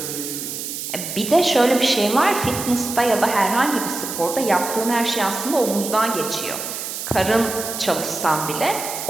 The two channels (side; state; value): right; noise; hiss, 6 dB below the sound